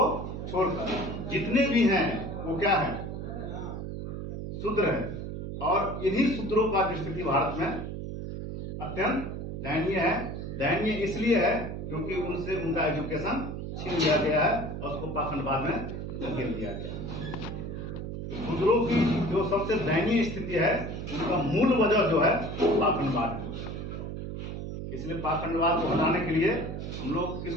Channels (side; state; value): right; noise; hum, 6 dB below the sound